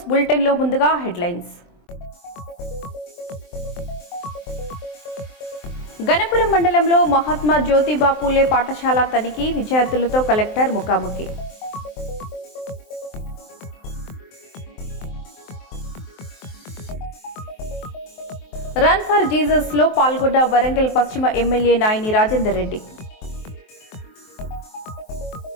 bulletin లో ముందుగా హెడ్లైన్స్. గణపురం మండలంలో మహాత్మా జ్యోతిబా పూలే పాఠశాల తనిఖీ, విద్యార్థులతో కలెక్టర్ ముఖాముఖి. రన్ ఫర్ జీసస్ లో పాల్గొన్న వరంగల్ పశ్చిమ ఎమ్మెల్యే నాయని రాజేందర్ రెడ్డి.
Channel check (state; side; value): late; right; 23 ms